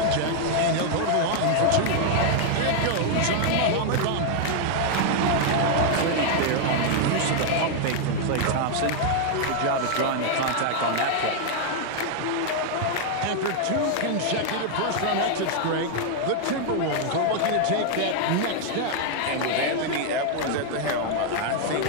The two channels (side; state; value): both; different; correlation 0.00